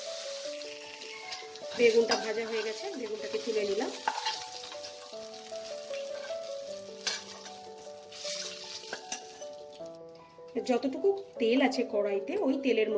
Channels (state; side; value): identical; both; correlation 1.00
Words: বেগুনটা ভাজা হয়ে গেছে, বেগুনটাকে তুলে নিলাম। যতটুকু তেল আছে কড়াইতে, ওই তেলের